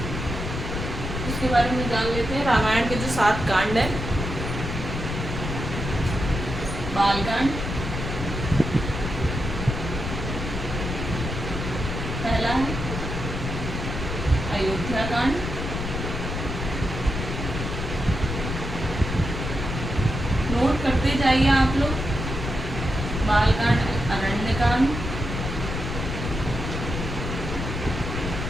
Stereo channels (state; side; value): noise; left; rumble, 4 dB below the sound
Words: उसके बारे में जान लेते हैं। रामायण के जो 7 कांड है, बालकांड पहला है, अयोध्या कांड, नोट करते जाइए आप लोग। बालकांड, अरण्यकांड,